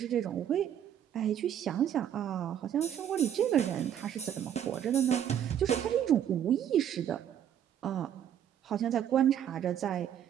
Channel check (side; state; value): left; quieter; 9.8 dB